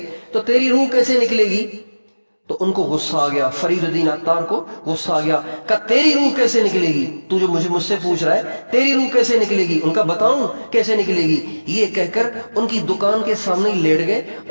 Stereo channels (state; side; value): inverted; both; correlation -1.00